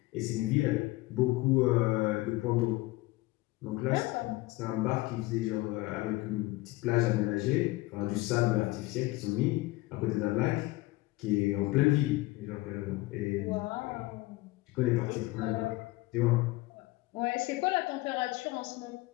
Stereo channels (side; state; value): right; quieter; 20.0 dB